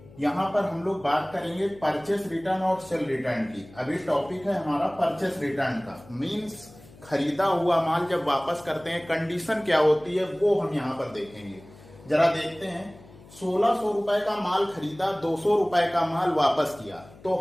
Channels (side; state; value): left; noise; hum, 22 dB below the sound